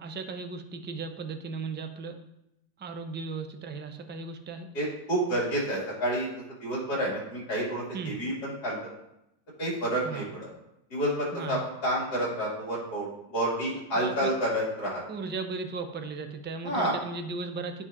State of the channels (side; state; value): right; late; 2.7 ms